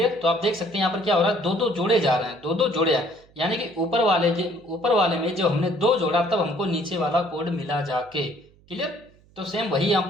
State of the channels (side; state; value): right; noise; hum, 29 dB below the sound